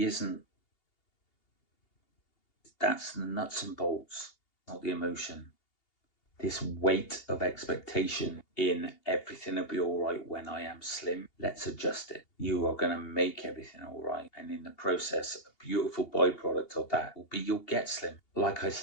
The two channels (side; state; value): right; late; 2.8 ms